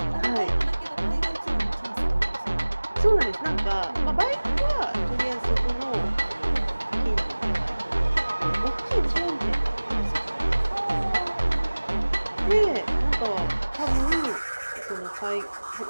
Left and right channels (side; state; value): both; inverted; correlation -1.00